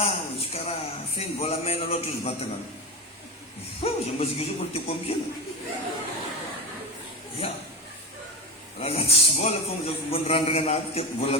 izy karaha feny volamena loatra izy vatana za mbazika zay mbola tiako ampiana ya raha za tsisy vola fo za fomba nirandrana anaty tiako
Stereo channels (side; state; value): both; normal; correlation 0.23